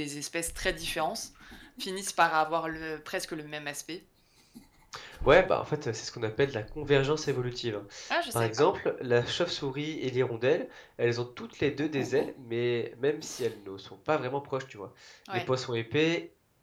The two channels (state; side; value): identical; both; correlation 1.00